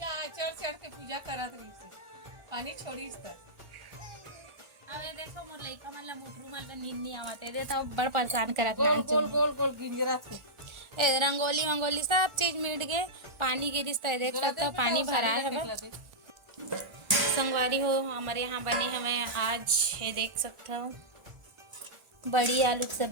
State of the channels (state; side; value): late; left; 1.4 ms